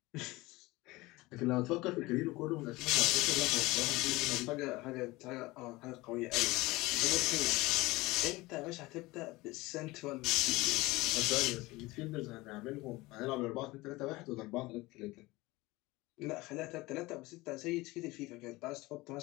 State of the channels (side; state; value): right; quieter; 20.9 dB